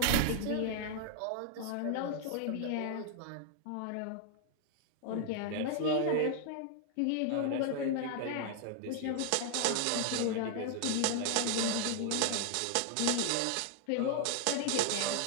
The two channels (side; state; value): both; different; correlation 0.00